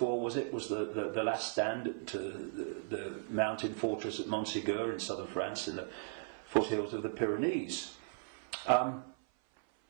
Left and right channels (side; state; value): left; silent; 53 dB below the other